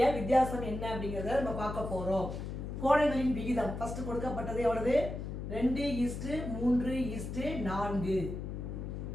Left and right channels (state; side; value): noise; left; hum, 6 dB below the sound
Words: வித்தியாசம் என்ன அப்படிங்கிறத நம்ம பார்க்க போகிறோம். கோணங்களின் விகிதம் ஃபர்ஸ்ட் கொடுக்கப்பட்டது எவ்வளவு? 2:3:4.